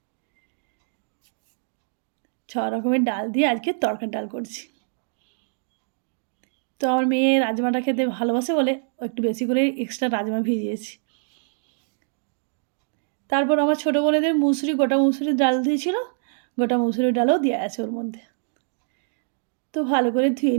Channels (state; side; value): silent; left; digital silence